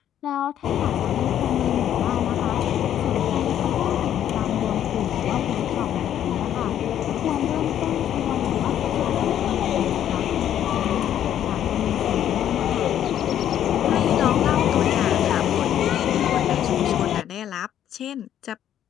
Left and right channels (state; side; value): quieter; right; 10.6 dB